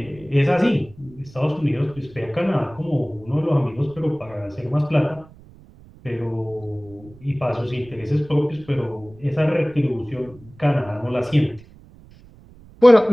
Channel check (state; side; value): noise; right; rumble, 23 dB below the sound